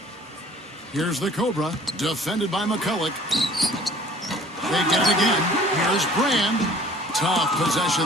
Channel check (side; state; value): both; normal; correlation 0.51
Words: Here's the Cobra, defended by McCulloch. They get it again. Here's Brand. Tough